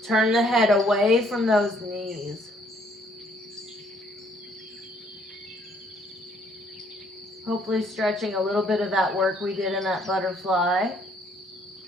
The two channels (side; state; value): both; normal; correlation 0.64